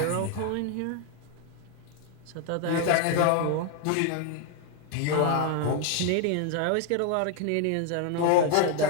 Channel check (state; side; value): different; both; correlation 0.00